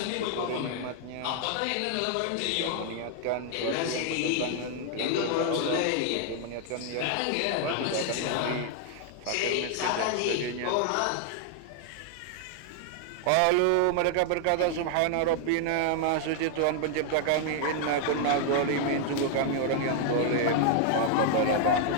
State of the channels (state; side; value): different; both; correlation 0.00